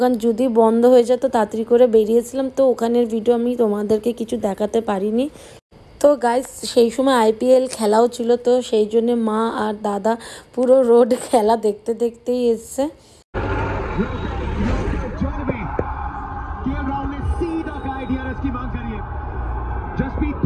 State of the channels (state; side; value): identical; both; correlation 1.00